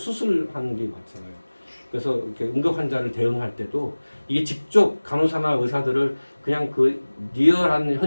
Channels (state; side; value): inverted; both; correlation -1.00